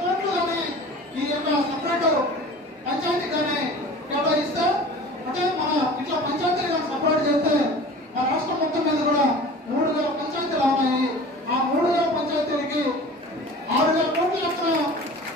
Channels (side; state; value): both; normal; correlation 0.40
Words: కోట్లు కానీ ఈ యొక్క సపరేట్ పంచాయతీ కానీ కేటాయిస్తే, అంటే మన ఇట్లా పంచాయతీలు కానీ సపరేట్ చేస్తే మన రాష్ట్రం మొత్తం మీద కూడా 3,000 పంచాయతీలు ఉన్నాయి. ఆ 3,000 పంచాయతీలకి 6,000 కోట్ల లక్షల